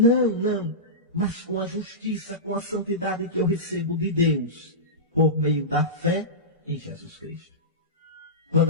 mas com a justiça, com a santidade que eu recebo de Deus, por meio da fé em Jesus Cristo.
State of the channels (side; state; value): both; normal; correlation -0.17